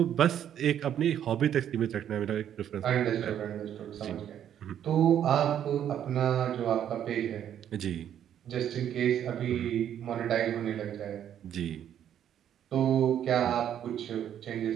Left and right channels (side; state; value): left; quieter; 10.0 dB